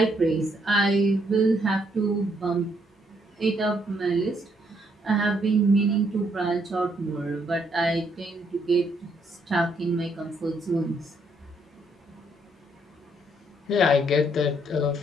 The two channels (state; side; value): normal; both; correlation 0.72